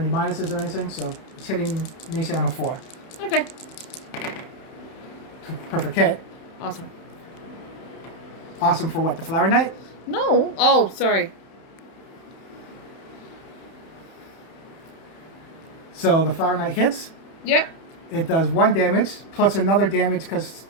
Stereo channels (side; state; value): right; late; 31 ms